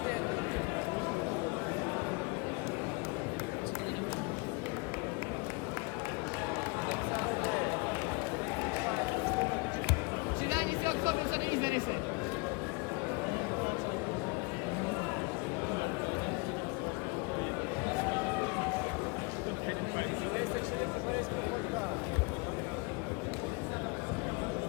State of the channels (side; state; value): right; quieter; 29.6 dB